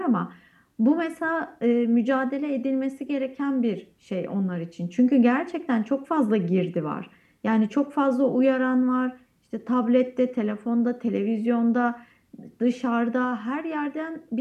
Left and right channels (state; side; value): identical; both; correlation 1.00